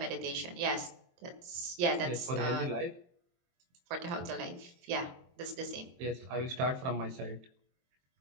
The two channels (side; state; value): left; late; 23 ms